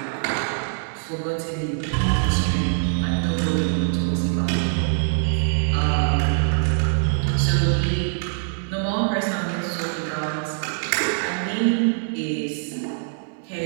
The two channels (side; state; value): left; silent; digital silence